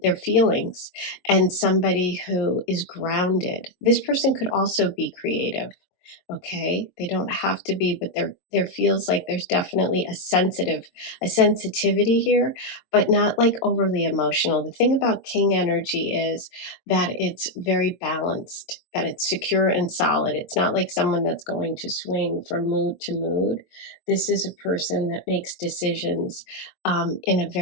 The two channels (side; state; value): right; late; 22 ms